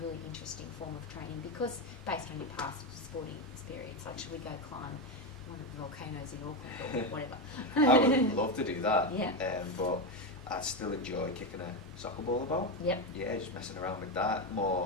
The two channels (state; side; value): normal; both; correlation 0.12